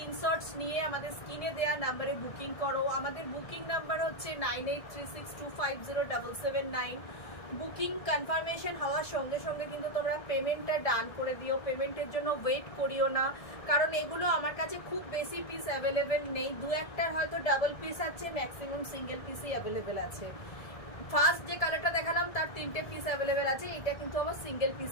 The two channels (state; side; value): late; right; 1.6 ms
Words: নিয়ে আমাদের স্ক্রিনে দেওয়া নাম্বারে বুকিং করো। আমাদের বুকিং নাম্বার হচ্ছে 9836250779। বুকিং কনফার্মেশন হওয়ার সঙ্গে সঙ্গে কিন্তু তোমরা পেমেন্টটা ডান করে দিও, পেমেন্টের জন্য ওয়েট করিও না, কারণ এগুলো আমার কাছে খুব বেশি পিস অ্যাভেলেবেল নেই, দু একটার হয়তো ডাবল পিস আছে, ম্যাক্সিমাম সিঙ্গেল পিসই অ্যাভেলেবেল আছে। ফার্স্ট যে কালারটা দেখালাম তার 3টে পিস অ্যাভেলেবেল আছে, এটা কিন্তু আমার সিঙ্গেল